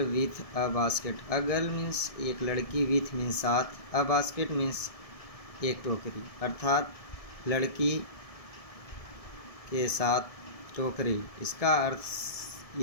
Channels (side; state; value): right; late; 1.7 ms